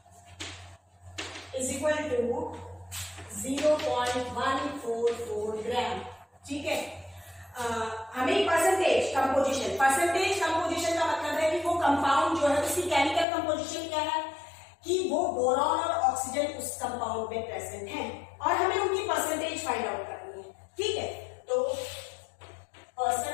is equal to 0.144 gram. ठीक है, हमें परसेंटेज कंपोजिशन का मतलब है कि वो कंपाउंड जो है उसकी केमिकल कंपोजिशन क्या है, कि वो बोरॉन और ऑक्सीजन उस कंपाउंड में प्रेजेंट है और हमें उनकी परसेंटेज फाइंड आउट करनी है। ठीक है, तो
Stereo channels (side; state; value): right; drops out; at 13.2 s